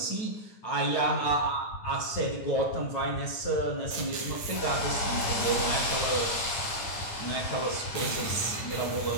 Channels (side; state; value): right; late; 9.2 ms